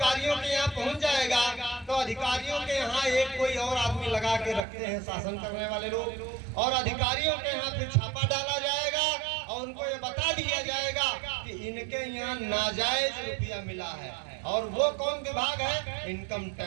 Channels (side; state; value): left; drops out; at 4.6 s